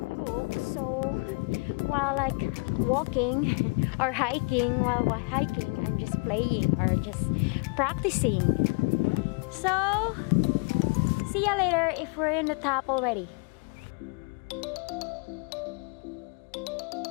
book, so while like walking or hiking, I'm just playing or just practicing. So see ya later if we're in the top already.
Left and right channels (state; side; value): quieter; right; 34.0 dB